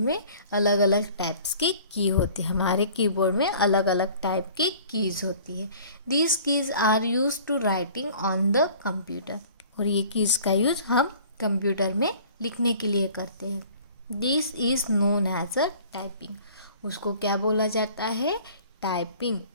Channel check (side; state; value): both; inverted; correlation -0.49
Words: अलग अलग टाइप्स की की होती है। हमारे कीबोर्ड में अलग अलग टाइप की कीज़ होती है। These keys are use to writing on the computer. और ये कीज़ का यूज हम कंप्यूटर में लिखने के लिए करते हैं। This is known as a typing. उसको क्या बोला जाता है? टाइपिंग।